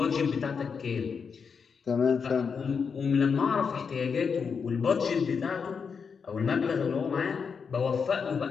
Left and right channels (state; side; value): quieter; right; 5.9 dB